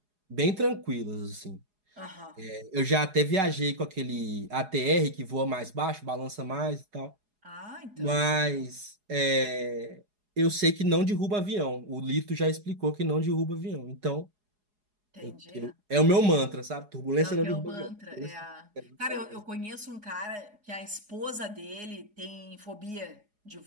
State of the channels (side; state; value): left; late; 4.8 ms